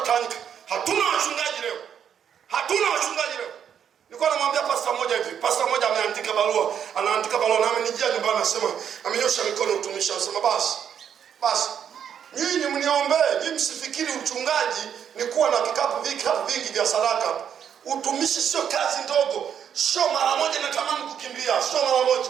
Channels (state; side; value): quieter; left; 8.5 dB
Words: Hatuna wachungaji leo. Nilikuwa namwambia pastor mmoja hivi. Pastor mmoja ameandika barua, na amenijia nyumbani anasema, amenyosha mikono utumishi, anasema basi nyinyi mniombee, nyinyi msifikiri uchungaji ni kuwa na vikapu vingi vya sadaka. Utumishi sio kazi ndogo, sio mara moja natamani kukimbia, sio mara moja.